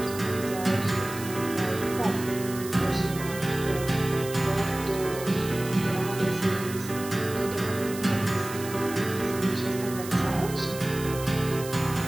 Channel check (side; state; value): right; noise; hiss, 12 dB below the sound